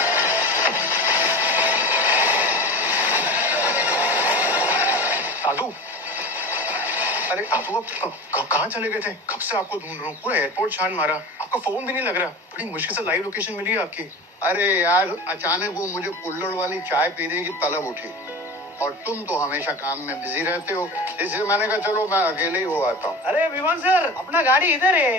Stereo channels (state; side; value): normal; both; correlation 0.32